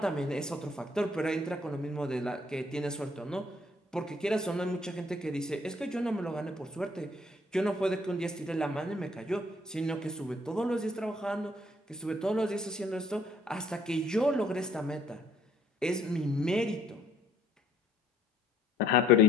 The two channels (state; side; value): normal; both; correlation 0.63